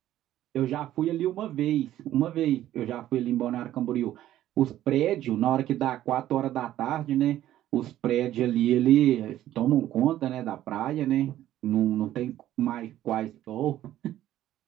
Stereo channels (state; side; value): quieter; left; 13.1 dB